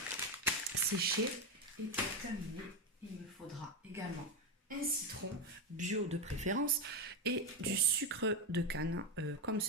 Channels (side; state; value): both; normal; correlation 0.11